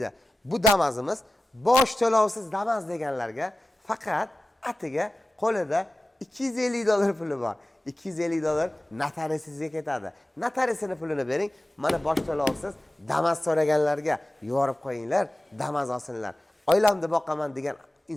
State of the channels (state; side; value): normal; both; correlation 0.95